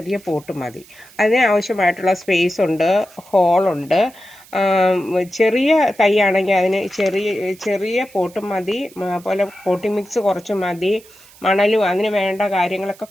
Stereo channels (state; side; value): noise; right; hiss, 24 dB below the sound